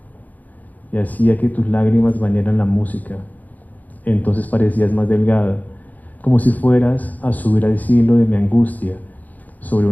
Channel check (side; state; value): right; late; 0.080 ms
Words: y hacía que tus lágrimas bañaran la música. Entonces parecías más delgada, como si fueras a subir al cielo de mi angustia sobre